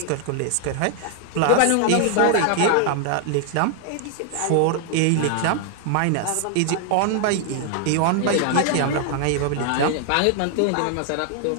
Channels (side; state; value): both; different; correlation 0.00